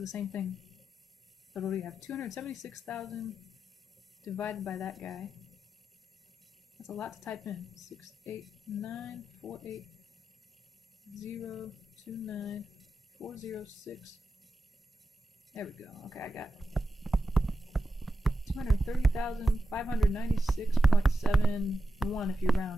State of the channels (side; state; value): both; normal; correlation 0.90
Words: same thing. So what do we have? 276,000 divided by that guy. That's a lot to type in. 68948029406. There we go. Okay, I got 230,596.71 if you